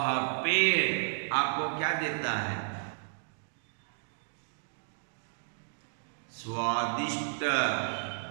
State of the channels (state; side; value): silent; left; digital silence